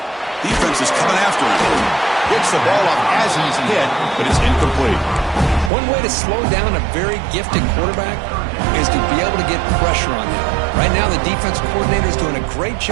Defense is coming after him. Gets the ball up as he's hit, but it's incomplete. One way to slow down a very gifted quarterback is to be able to get pressure on him. Right now, the defensive coordinator is doing a great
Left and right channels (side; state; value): left; drops out; at 5.7 s